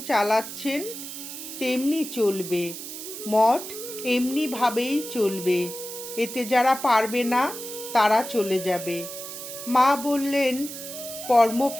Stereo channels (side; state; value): right; noise; hiss, 10 dB below the sound